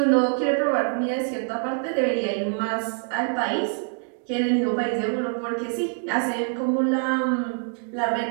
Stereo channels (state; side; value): silent; left; 56 dB below the other